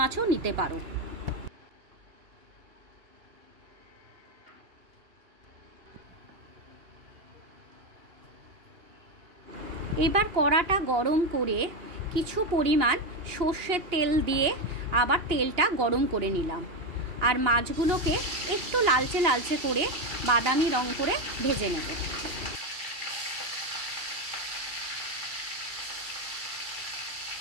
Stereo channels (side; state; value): left; late; 2.9 ms